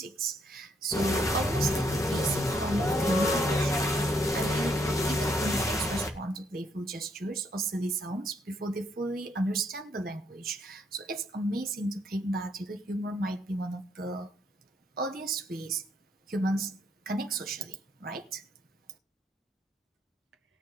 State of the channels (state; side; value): normal; both; correlation 0.72